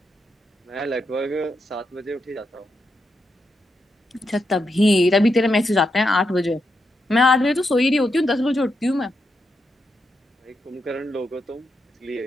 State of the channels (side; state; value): both; normal; correlation 0.84